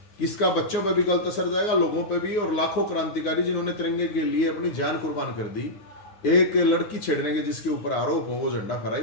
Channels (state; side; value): late; right; 9.7 ms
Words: कि इसका बच्चों पे भी गलत असर जाएगा, लोगों पे भी, और लाखों क्रांतिकारी जिन्होंने तिरंगे के लिए अपनी जान कुर्बान कर दी, एक लड़की छेड़ने के जिसके ऊपर आरोप हो वो झंडा फहराई,